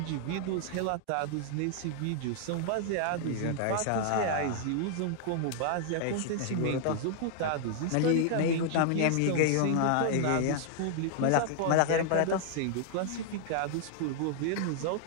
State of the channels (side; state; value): both; different; correlation -0.01